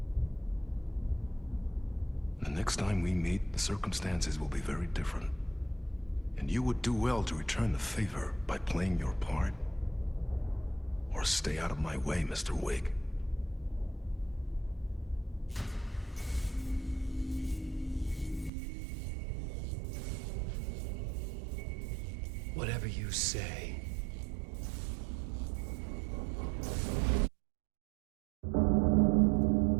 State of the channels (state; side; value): drops out; left; at 18.5 s